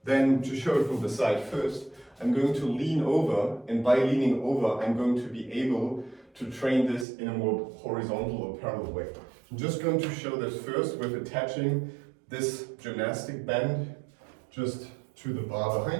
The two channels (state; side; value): drops out; left; at 7.1 s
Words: Then to show it from the side first, I'm going to lean over, and by leaning over, I'm going to be able to train this in a more horizontal or parallel way. I'm just going to show this first with attaching this gymnastic band just to the bar